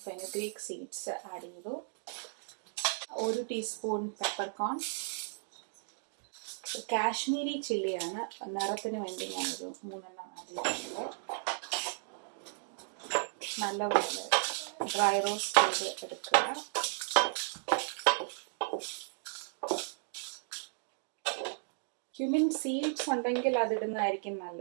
ഫെനുഗ്രീക്ക് സീഡ്സ് ആഡ് ചെയ്തു, 1 ടീസ്പൂൺ പെപ്പർകോൺ, കാശ്മീരി ചില്ലിയാണ്, നിറത്തിന് വേണ്ടി ഞാനൊരു 3 ആഡ് ചെയ്തിട്ടുണ്ട്. നല്ലപോലെ ഡ്രൈ റോസ്റ്റ് ചെയ്ത് എടുക്കുക. ക്യുമിൻ സീഡ്സ് ഉണ്ടെങ്കിൽ അതിടുന്നതായിരിക്കും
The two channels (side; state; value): left; silent; digital silence